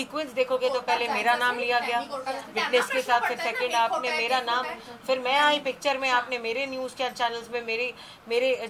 देखोगे तो पहले मेरा नाम लिया गया विटनेस के साथ, फिर सेकंड आपने मेरा नाम, फिर मैं आई पिक्चर में, आपने मेरे न्यूज चैनल्स में मेरे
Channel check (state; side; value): identical; both; correlation 1.00